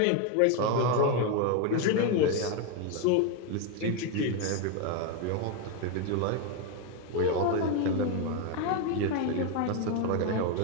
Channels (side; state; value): both; different; correlation 0.02